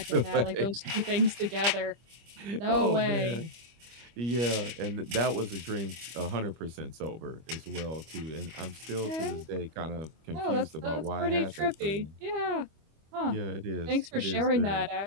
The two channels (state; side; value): late; left; 25 ms